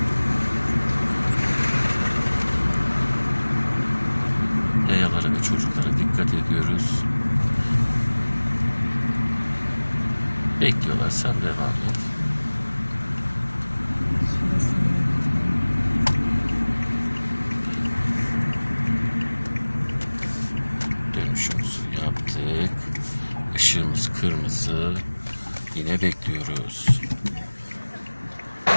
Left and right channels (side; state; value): both; inverted; correlation -1.00